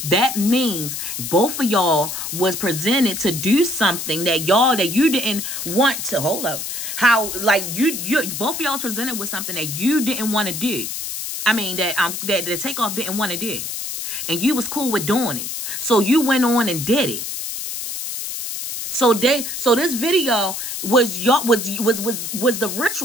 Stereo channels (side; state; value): left; noise; hiss, 5 dB below the sound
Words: that means both of y'all was presented to do something that you didn't want to. Hold up. How like you both of y'all was presented with something that you didn't want to do. I mean that the Takeoff didn't want to do. And you was cool with doing it. So you went on and did it. So this video was the